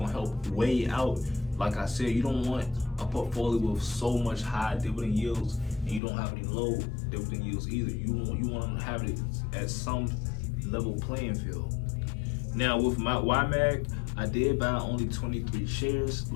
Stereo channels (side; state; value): right; drops out; at 6.0 s